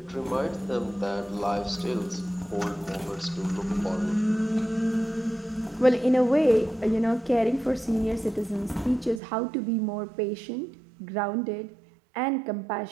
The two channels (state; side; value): drops out; left; at 9.2 s